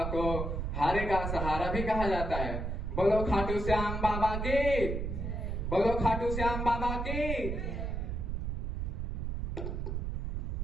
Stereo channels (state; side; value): noise; right; rumble, 2 dB below the sound